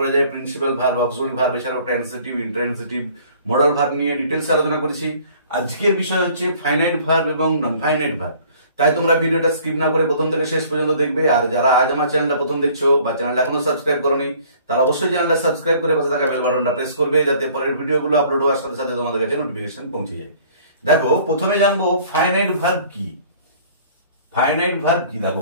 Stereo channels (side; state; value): both; inverted; correlation -0.54